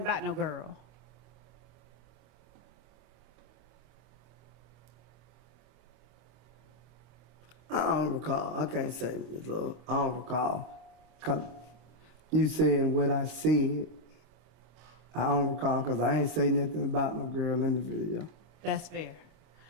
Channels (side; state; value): left; late; 25 ms